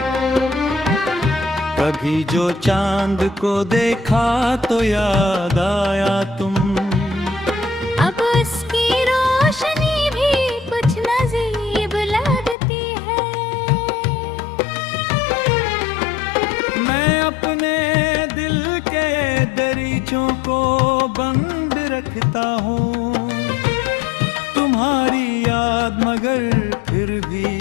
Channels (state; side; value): drops out; right; at 12.6 s